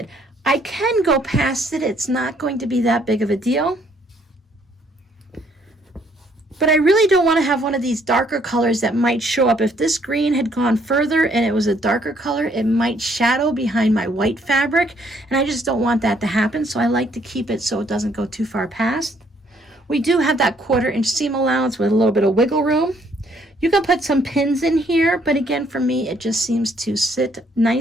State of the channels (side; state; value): both; normal; correlation 0.66